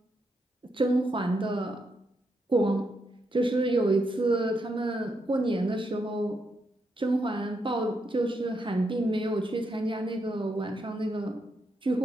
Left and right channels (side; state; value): both; normal; correlation 0.80